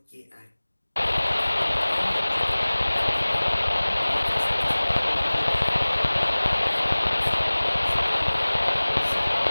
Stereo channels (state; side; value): inverted; both; correlation -1.00